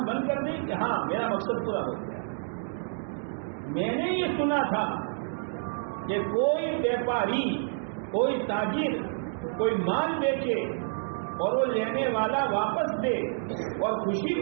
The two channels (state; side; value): silent; left; digital silence